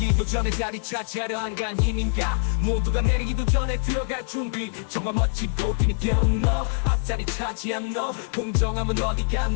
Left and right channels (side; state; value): right; silent; digital silence